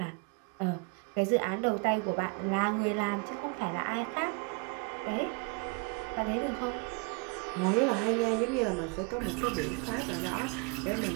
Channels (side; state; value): left; quieter; 30.2 dB